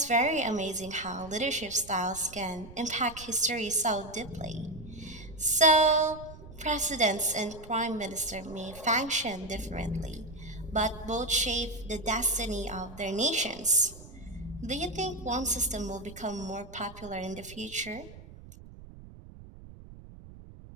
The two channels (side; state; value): right; noise; rumble, 17 dB below the sound